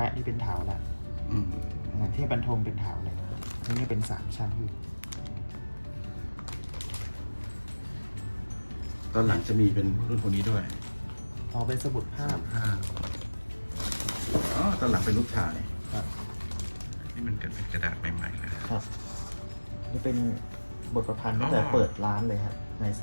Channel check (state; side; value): inverted; both; correlation -1.00